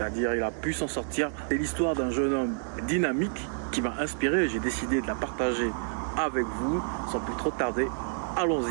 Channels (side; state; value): left; silent; 59 dB below the other